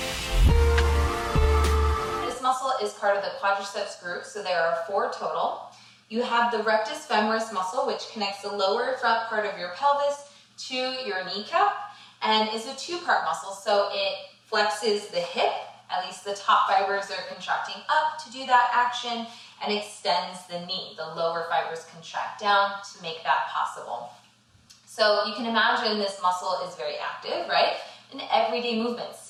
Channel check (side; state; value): both; identical; correlation 1.00